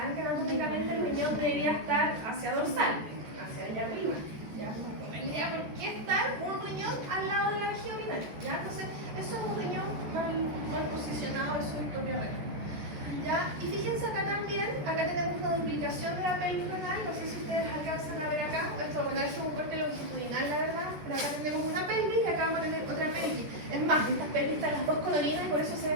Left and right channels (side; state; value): left; late; 14 ms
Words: que anatómicamente el riñón debería estar hacia dorsal, hacia allá arriba. ¿Ya? No tendría por qué estar un riñón al lado de la vejiga urinaria. ¿Ya? Entonces, eso es un riñón mal posicionado, eso es ectopia renal. ¿Ya? Y fíjense acá también, acá tenemos una duplicación de la pelvis renal, no sé si ustedes alcanzan a ver acá, esto bueno, es un corte longitudinal la verdad, pero acá tenemos una pelvis y acá vamos a tener otra pelvis. Es más, estas pelvis están las dos colorinas y por eso se